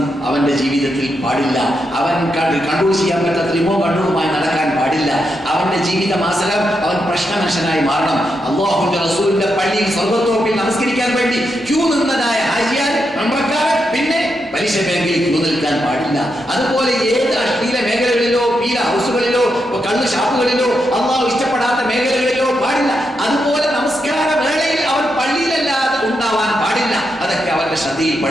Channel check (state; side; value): normal; both; correlation 0.84